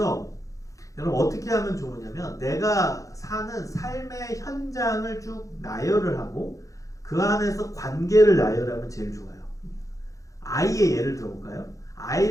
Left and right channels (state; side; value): late; right; 0.16 ms